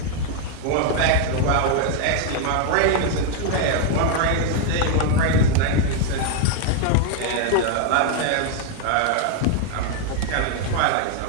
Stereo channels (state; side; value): different; both; correlation 0.00